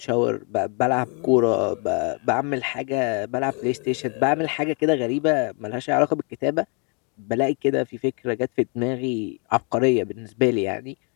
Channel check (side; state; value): right; quieter; 35.5 dB